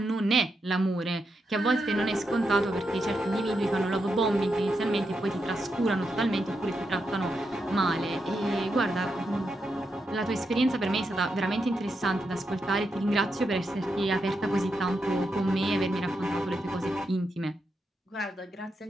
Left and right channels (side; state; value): both; normal; correlation 0.84